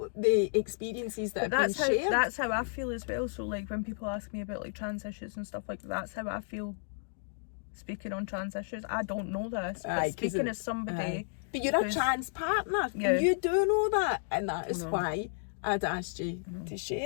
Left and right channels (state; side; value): silent; right; digital silence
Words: the experiences that have been shared. That's how I feel as well. So like when people ask me about like trans issues and stuff like that, that's how I feel speaking on trans issues. I don't know this, but speaking as somebody... But you're a trans partner, and you do know that, and that is why I'd asked you to